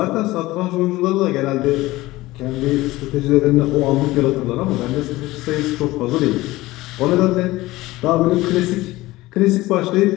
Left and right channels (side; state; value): right; quieter; 18.6 dB